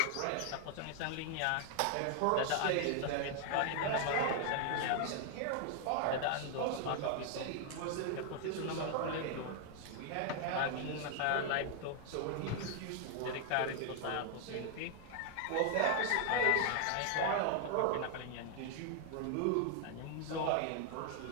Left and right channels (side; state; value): both; different; correlation 0.00